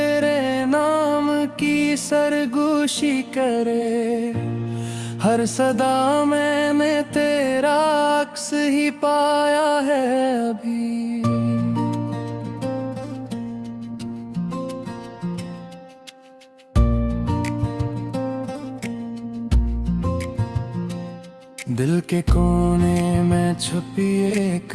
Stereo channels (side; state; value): both; identical; correlation 1.00